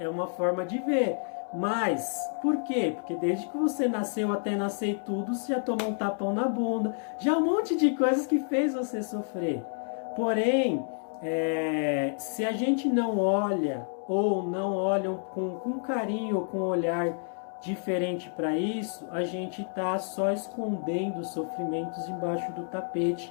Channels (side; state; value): right; silent; 58 dB below the other